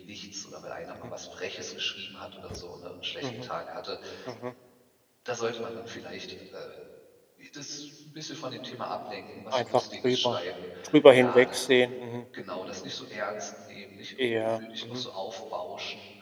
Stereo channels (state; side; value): identical; both; correlation 1.00